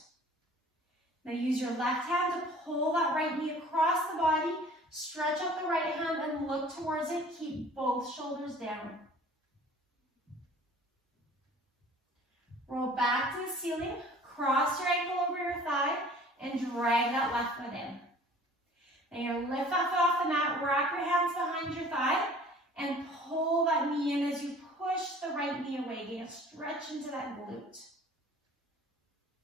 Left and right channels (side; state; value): both; normal; correlation 0.49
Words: Now use your left hand to pull that right knee across the body. Stretch out the right hand and look towards it. Keep both shoulders down. Roll back to the ceiling. Cross your ankle over your thigh and drag that left foot in. Then you're going to lift that foot off the mat, wrap your hands behind your thigh, and pull that knee in as you push the right knee away. You're going to stretch into that glute.